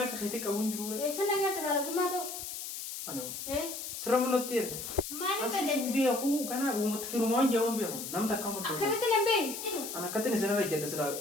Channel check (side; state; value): left; noise; hiss, 7 dB below the sound